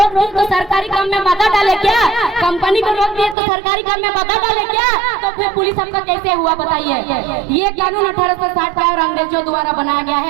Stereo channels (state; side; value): drops out; left; at 3.4 s